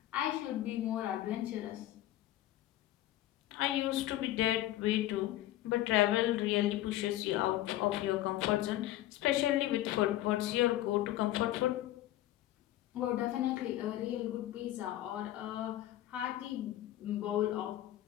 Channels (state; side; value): quieter; right; 14.4 dB